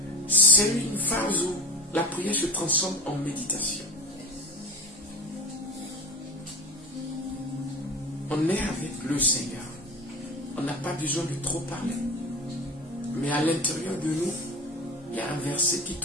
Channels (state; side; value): normal; both; correlation 0.31